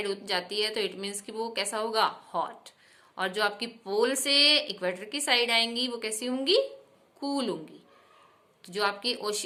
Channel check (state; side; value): identical; both; correlation 1.00